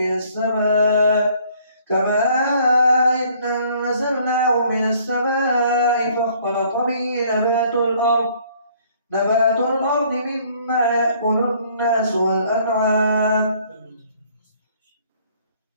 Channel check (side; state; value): both; inverted; correlation -0.60